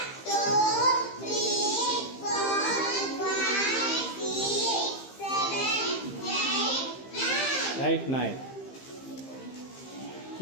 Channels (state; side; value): late; right; 15 ms